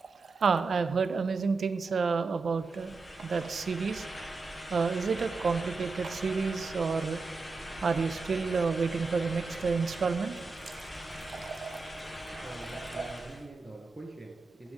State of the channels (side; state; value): left; quieter; 4.2 dB